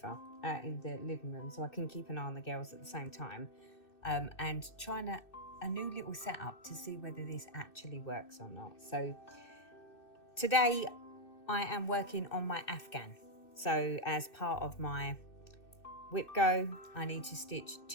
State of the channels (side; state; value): right; late; 2.6 ms